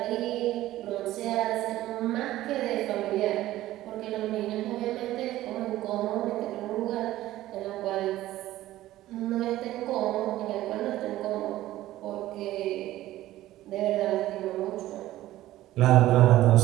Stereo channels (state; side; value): quieter; left; 15.1 dB